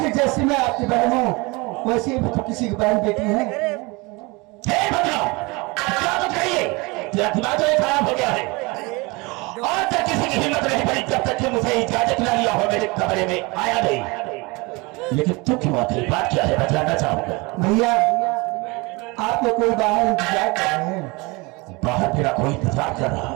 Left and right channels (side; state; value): left; quieter; 25.8 dB